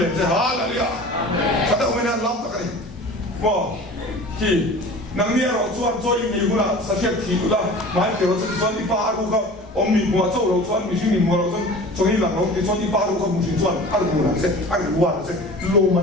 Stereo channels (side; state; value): both; normal; correlation 0.40